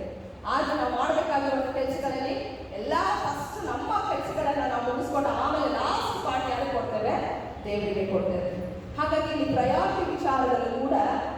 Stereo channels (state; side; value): identical; both; correlation 1.00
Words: ಆದ್ರೆ ನಾವು ಮಾಡಬೇಕಾಗಿರುವ ಕೆಲಸಗಳಲ್ಲಿ ಎಲ್ಲ ಫಸ್ಟ್ ನಮ್ಮ ಕೆಲಸಗಳನ್ನ ನಾವು ಮುಗಿಸ್ಕೊಂಡು ಆಮೇಲೆ ಲಾಸ್ಟ್ ಪಾರ್ಟ್ ಯಾರಿಗೆ ಕೊಡ್ತೇವೆ, ದೇವರಿಗೆ ಕೊಡ್ತೇವೆ. ಹಾಗಾಗಿ ಈ ಪ್ರಯಾರಿಟಿ ವಿಚಾರದಲ್ಲೂ ಕೂಡ